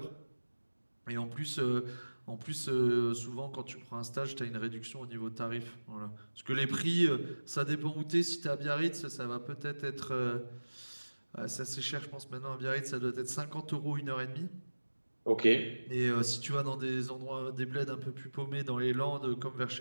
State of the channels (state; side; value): inverted; both; correlation -1.00